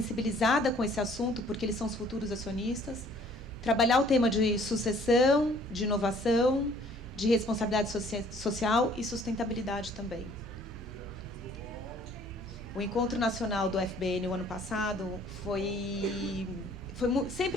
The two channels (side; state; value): both; normal; correlation 0.57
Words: com esse assunto, porque eles são os futuros acionistas. Trabalhar o tema de sucessão, de inovação, de responsabilidade social e sustentabilidade também. O Encontro Nacional do FBN, o ano passado,